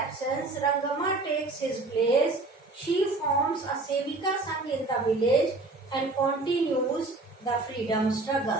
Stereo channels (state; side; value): quieter; left; 3.2 dB